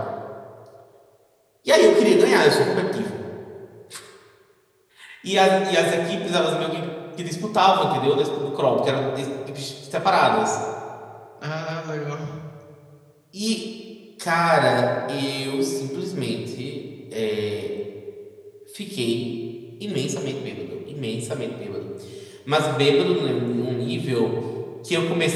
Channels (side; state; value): both; identical; correlation 1.00